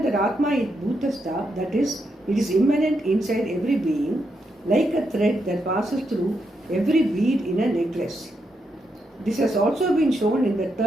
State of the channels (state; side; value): normal; both; correlation 0.82